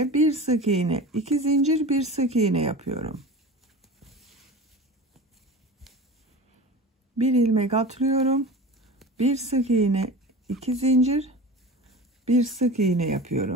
bir sık iğne, 2 zincir, bir sık iğne yapıyorum. Bir ilmek atlıyorum. Bir sık iğne, 2 zincir, bir sık iğne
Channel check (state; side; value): normal; both; correlation 0.33